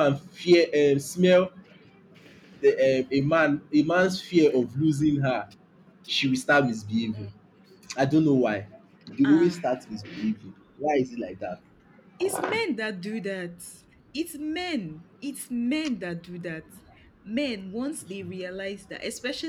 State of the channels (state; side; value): identical; both; correlation 1.00